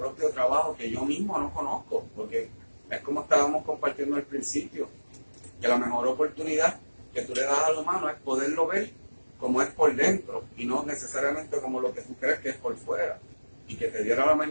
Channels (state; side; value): inverted; both; correlation -1.00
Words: trabajo que yo mismo no conozco, porque es como estábamos compartiendo al principio, que la mejor oportunidad que tú le das al humano es poderlo ver como es por dentro y no necesariamente como lo que tú crees que es por fuera, y que te diera la